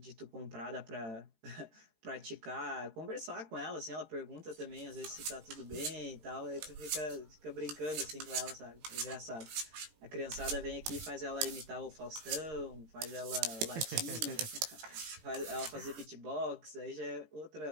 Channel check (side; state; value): left; late; 18 ms